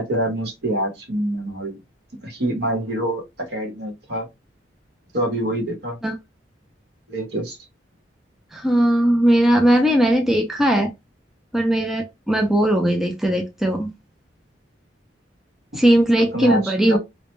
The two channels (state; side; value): normal; both; correlation 0.78